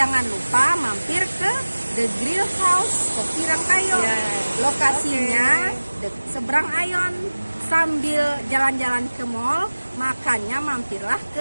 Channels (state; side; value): inverted; both; correlation -1.00